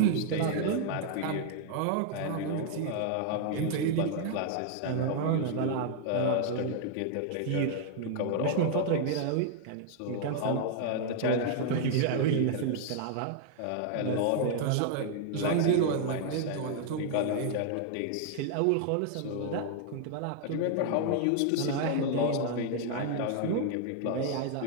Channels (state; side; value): different; both; correlation -0.01